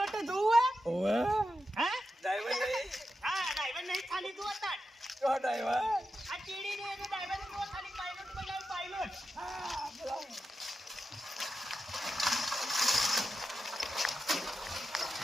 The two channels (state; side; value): normal; both; correlation 0.90